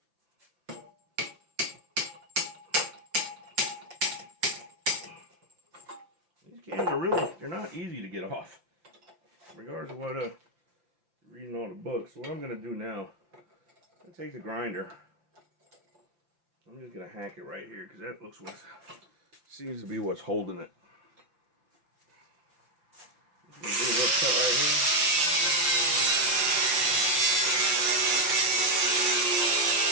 Cans are really, they're not easy to get off, regardless of what you're reading on the book. So what I'm going to do now, I'm going to take the grinder. I'm just going to hack it right here because that looks what seems to be what's holding it. Just going to do a little cut right here.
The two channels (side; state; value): left; late; 5.8 ms